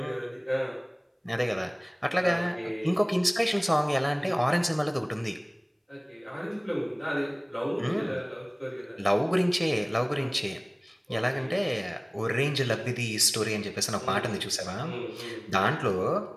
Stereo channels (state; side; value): identical; both; correlation 1.00